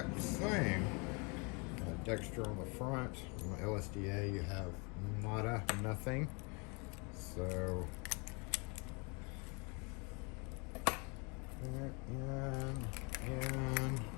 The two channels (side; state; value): right; quieter; 31.9 dB